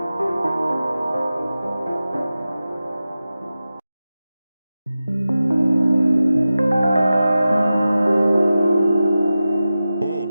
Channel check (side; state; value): both; inverted; correlation -0.94